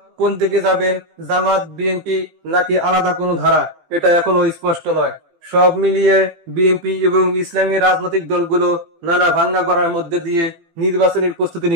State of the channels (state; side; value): late; left; 18 ms